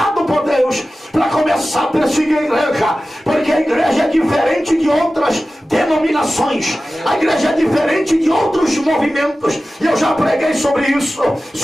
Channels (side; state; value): both; normal; correlation 0.95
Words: por Deus para começar a perseguir a igreja, porque a igreja é diferente de outras denominações, a igreja é diferente de outros movimentos, e eu já preguei sobre isso,